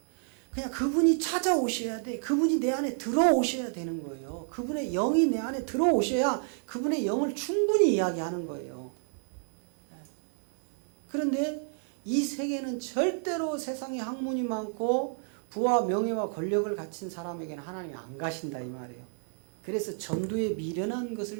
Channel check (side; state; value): left; silent; 58 dB below the other